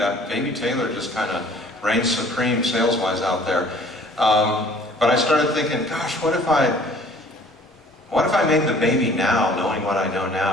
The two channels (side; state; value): both; normal; correlation 0.53